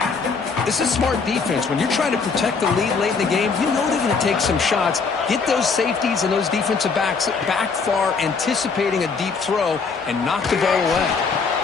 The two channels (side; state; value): right; quieter; 5.0 dB